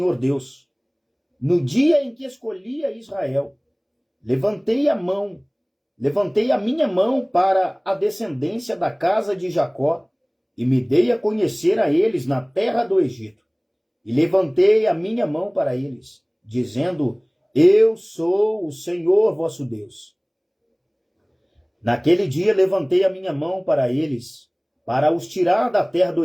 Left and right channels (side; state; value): both; identical; correlation 1.00